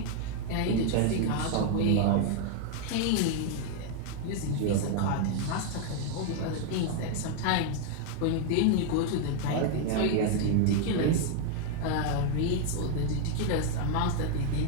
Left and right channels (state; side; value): different; both; correlation 0.00